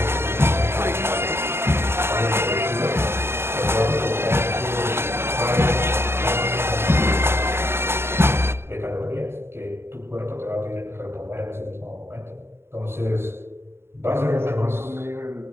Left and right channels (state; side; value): late; left; 0.12 ms